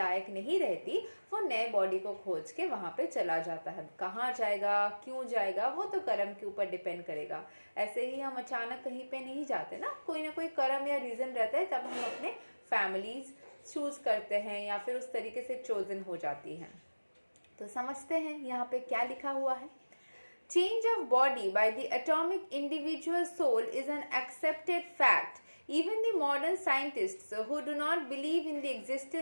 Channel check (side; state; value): both; inverted; correlation -1.00